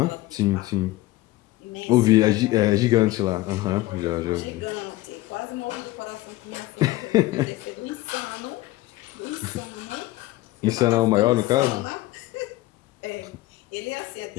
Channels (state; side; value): quieter; right; 17.7 dB